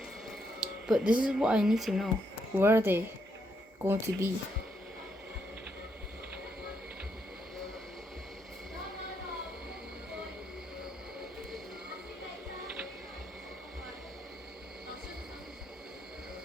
But this is what I need to know. Where are they going to be?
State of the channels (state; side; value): normal; both; correlation 0.77